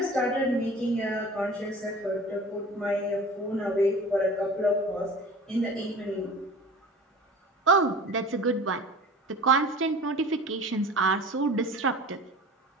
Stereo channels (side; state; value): both; normal; correlation 0.40